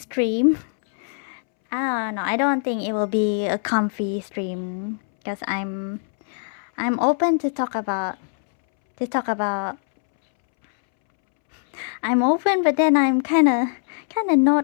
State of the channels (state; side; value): silent; right; 64 dB below the other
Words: I don't know. I don't think it will be a comfy stream because I'm open to talk about. I'm open, but then I'm kind of